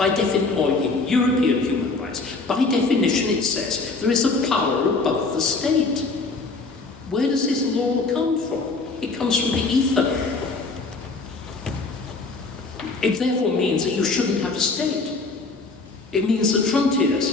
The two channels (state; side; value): quieter; right; 3.8 dB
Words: in European human rights, by definition it says there is a power above the state. Where does this law come from? It comes from the ether. It therefore means that you shouldn't have a state. It means that frontiers